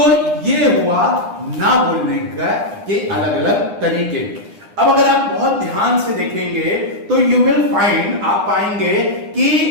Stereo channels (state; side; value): late; left; 9.8 ms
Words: ये हुआ ना बोलने का के अलग अलग तरीके। अब अगर आप बहुत ध्यान से देखेंगे तो यू विल फाइंड, आप पाएंगे